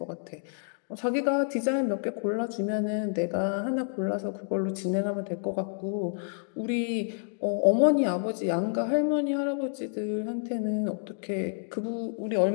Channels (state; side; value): silent; right; digital silence